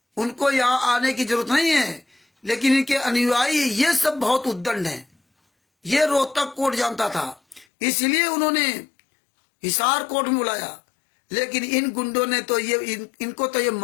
उनको यहां आने की जरूरत नहीं है। लेकिन इनके अनुयायी ये सब बहुत उद्दंड हैं, ये रोहतक कोर्ट जानता था, इसलिए उन्होंने हिसार कोर्ट में बुलाया। लेकिन इन गुंडों ने तो ये इनको तो ये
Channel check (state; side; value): drops out; right; at 7.7 s